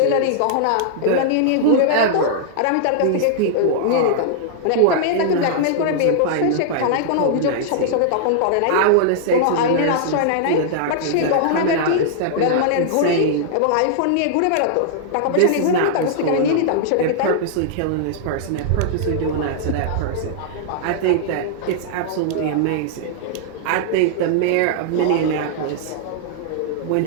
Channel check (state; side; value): different; both; correlation -0.01